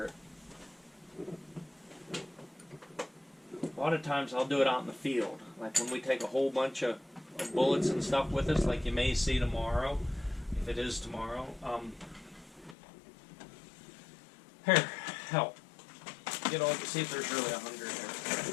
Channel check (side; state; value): right; drops out; at 12.8 s